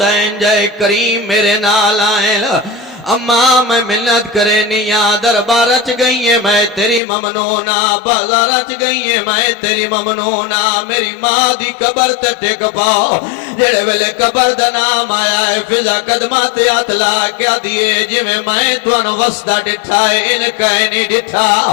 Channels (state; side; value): drops out; right; at 7.0 s